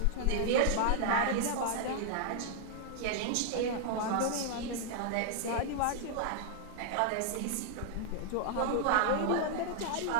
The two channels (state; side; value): different; both; correlation -0.01